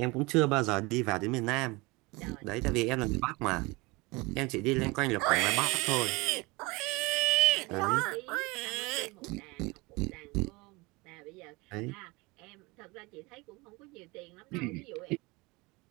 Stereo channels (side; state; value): left; quieter; 24.6 dB